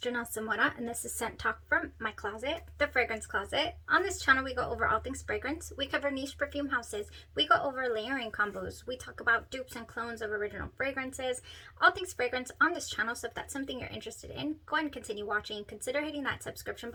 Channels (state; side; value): identical; both; correlation 1.00